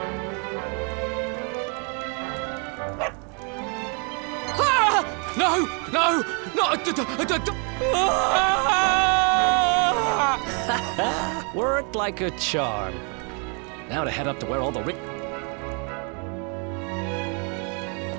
Ah! No! No! Worked like a charm. Now to head up to where all the rich...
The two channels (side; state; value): left; quieter; 37.0 dB